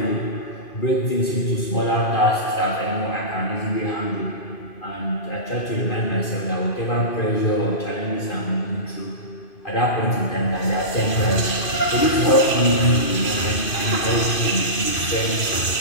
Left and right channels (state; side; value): late; right; 2.5 ms